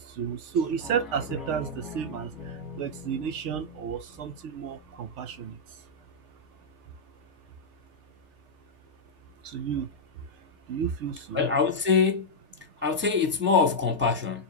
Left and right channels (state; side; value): late; left; 3.4 ms